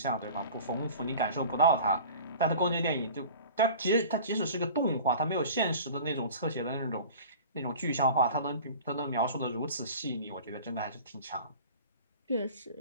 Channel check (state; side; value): inverted; both; correlation -0.40